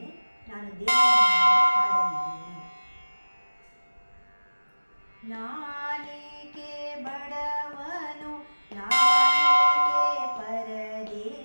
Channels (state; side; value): inverted; both; correlation -1.00